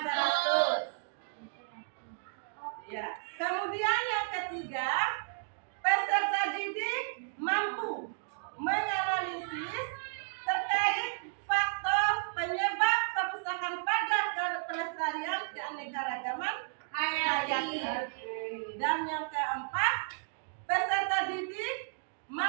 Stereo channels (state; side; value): silent; left; digital silence